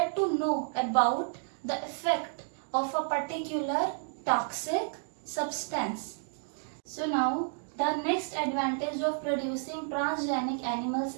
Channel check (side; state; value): left; silent; digital silence